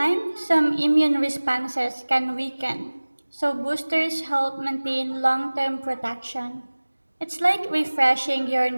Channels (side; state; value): both; inverted; correlation -1.00